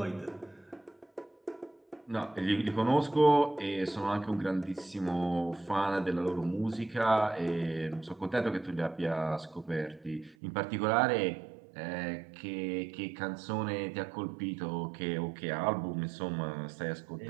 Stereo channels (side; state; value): left; drops out; at 10.4 s